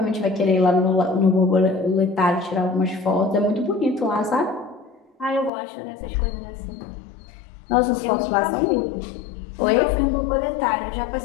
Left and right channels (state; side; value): drops out; right; at 5.5 s